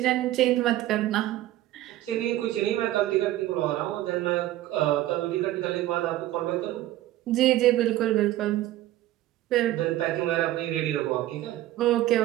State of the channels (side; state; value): left; quieter; 14.8 dB